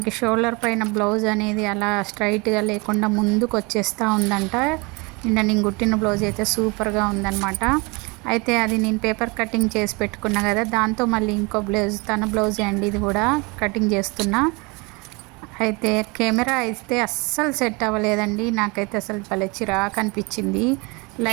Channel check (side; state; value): left; quieter; 27.6 dB